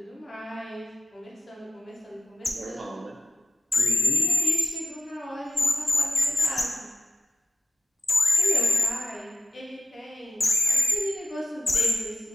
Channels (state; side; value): normal; both; correlation 0.96